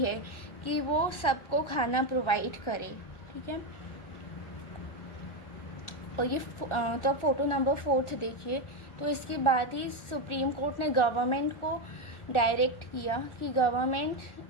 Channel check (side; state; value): right; late; 1.4 ms